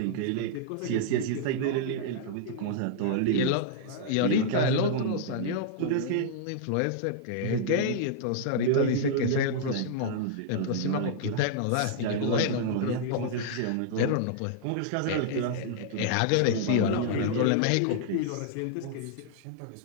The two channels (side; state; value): both; different; correlation -0.01